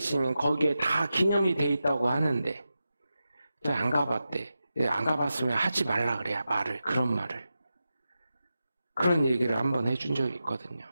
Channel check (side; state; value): both; inverted; correlation -0.91